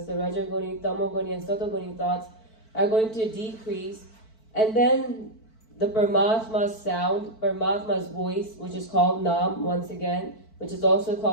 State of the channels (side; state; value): right; late; 4.5 ms